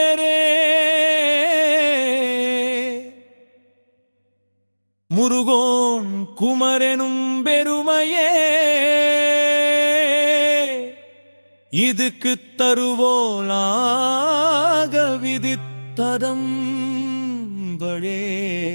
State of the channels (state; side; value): inverted; both; correlation -1.00